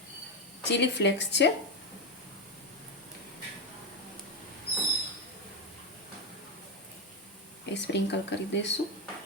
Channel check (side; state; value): both; normal; correlation 0.09